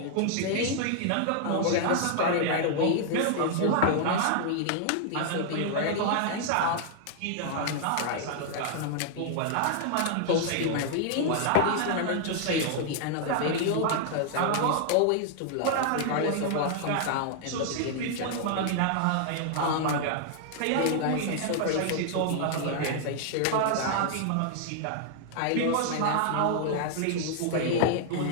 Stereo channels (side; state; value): both; different; correlation -0.01